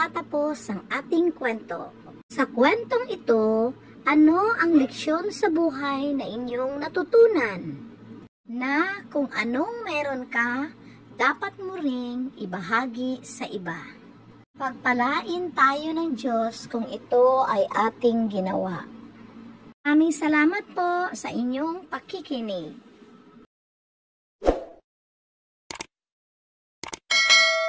ang ating kwento. Sa kwentong ito, ano ang leksyon sa buhay na inyong natutunan? Na kung anong meron ka, dapat mo ring ibahagi sa iba. Pagpalain tayo ng Diyos kung ito ay ating ginawa. Maraming salamat po sa inyong pakikinig.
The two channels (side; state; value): both; identical; correlation 1.00